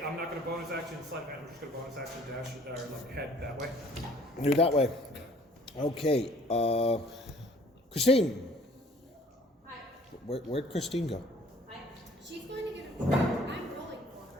not going to bonus action sleight of hand. I'm just going to bonus action dash or like head that way. Do it that way. Okay. Christine. Hi. Where'd Christine go? Hi. She's going to get a I'm rolling for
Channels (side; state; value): both; normal; correlation 0.55